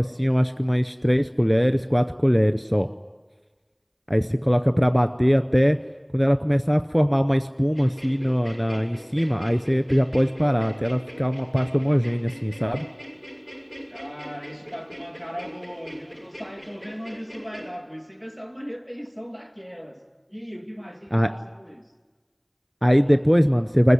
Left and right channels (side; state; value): both; identical; correlation 1.00